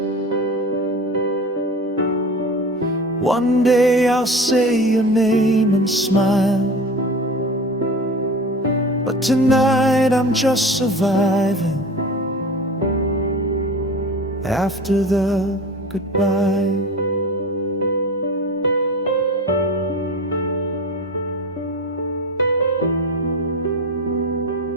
One day I'll say your name and smile. But tonight I'm just surviving after the goodbye.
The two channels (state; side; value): normal; both; correlation 0.34